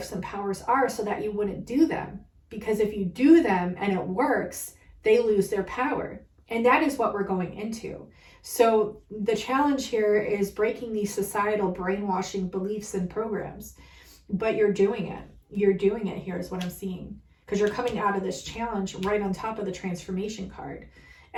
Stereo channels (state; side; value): identical; both; correlation 1.00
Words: and powers are, so that you wouldn't do them. Because if you do them and it works, they lose their power. And that is what we're going into. So the challenge here is breaking these societal brainwashing beliefs and programs. But you're doing it. You're doing it here is what I'm seeing. Because you're coming out of this challenge right on top of the transformation card.